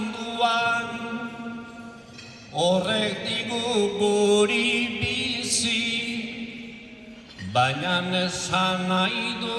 Horrek digu guri bizi Baina esan nahi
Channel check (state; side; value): identical; both; correlation 1.00